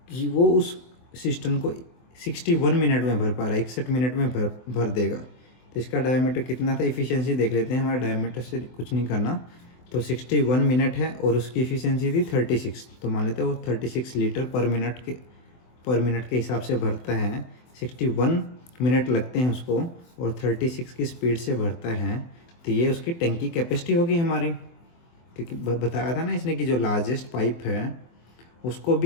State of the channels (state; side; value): late; right; 24 ms